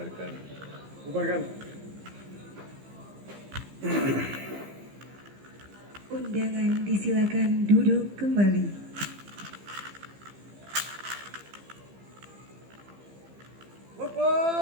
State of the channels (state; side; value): late; left; 15 ms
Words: Bubarkan. Undangan disilakan duduk kembali.